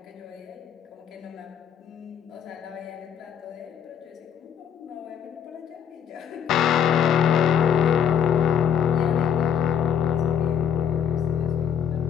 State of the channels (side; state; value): right; quieter; 8.3 dB